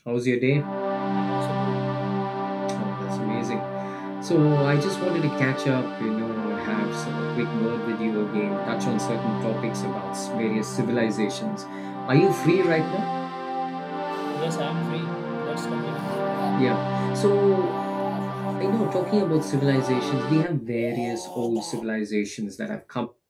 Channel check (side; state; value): both; identical; correlation 1.00